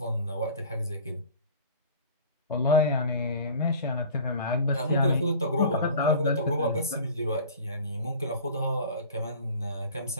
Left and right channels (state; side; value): inverted; both; correlation -0.42